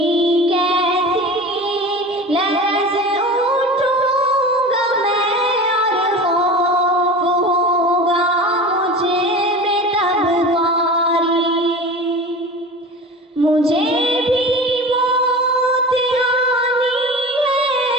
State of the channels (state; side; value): normal; both; correlation 0.34